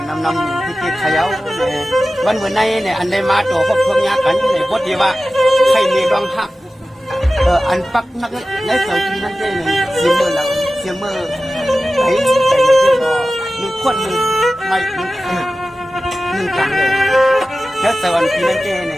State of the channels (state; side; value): normal; both; correlation 0.95